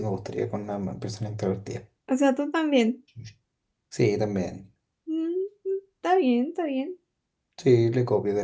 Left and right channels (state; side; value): identical; both; correlation 1.00